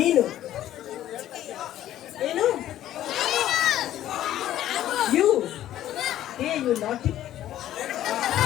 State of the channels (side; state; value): right; quieter; 12.7 dB